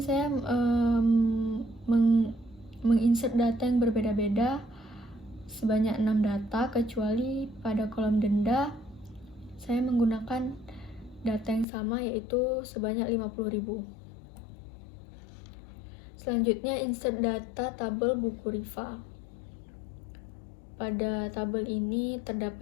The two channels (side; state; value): right; drops out; at 11.7 s